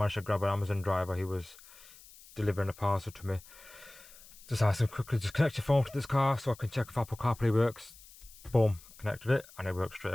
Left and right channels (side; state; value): left; noise; hiss, 21 dB below the sound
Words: to grab an Amazon driver. He was delivering a parcel to me. Just asked him quickly, just connect your phone to this car so I can check if Apple CarPlay works. Boom, connected it and it works straight